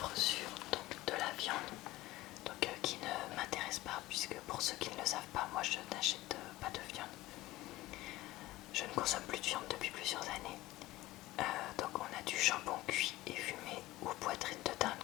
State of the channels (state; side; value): quieter; right; 17.3 dB